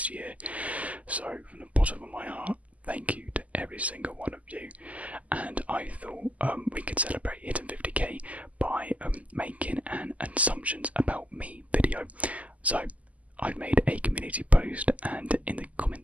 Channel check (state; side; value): late; left; 0.072 ms